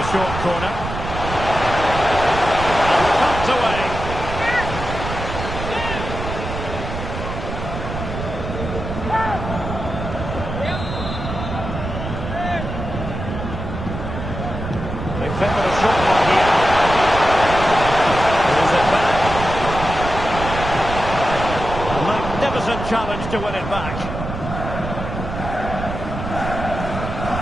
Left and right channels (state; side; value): noise; right; rumble, 6 dB below the sound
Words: short corner. And pumped away. magnificent challenge to win it back.